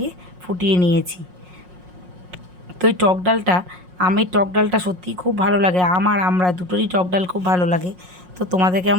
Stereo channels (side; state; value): left; late; 5.5 ms